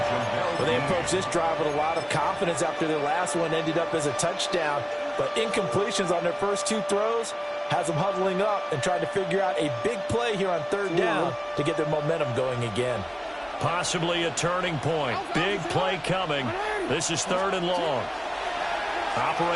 Well, they approached this drive with a lot of confidence after their last one ended up as a touchdown. But incompletions on their first 2 throws has them huddling up and trying to figure out a big play here on 3rd down to get their momentum going again. Possibly a turning point. Big play coming. This is 3rd and long.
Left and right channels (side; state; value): both; identical; correlation 1.00